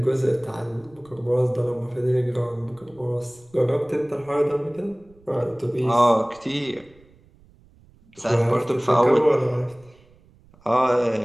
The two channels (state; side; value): noise; right; rumble, 28 dB below the sound